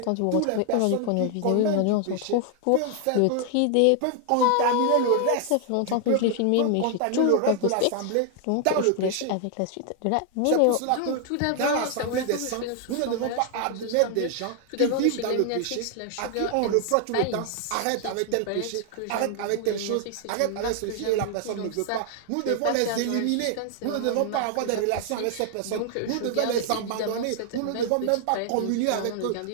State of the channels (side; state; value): both; different; correlation 0.00